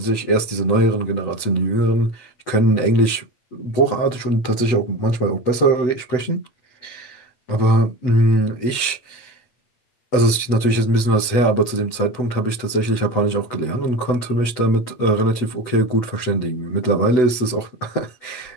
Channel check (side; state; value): right; late; 8.0 ms